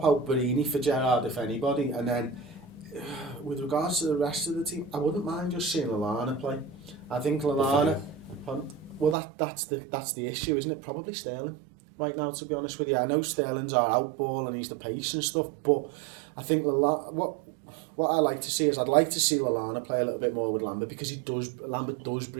out Barini for Gerrard if anybody, and then with regards to the rest of the team, I wouldn't mind just seeing Lallana play. I think Lallana. Well, that's the issue, isn't it? Probably Sterling right now, to be honest with you. I know Sterling's our outball and he's the pace and stuff, but I think what I like to see is I'd like to see Lallana play a little bit more with Lambert, because Lambert does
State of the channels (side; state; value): left; drops out; at 9.2 s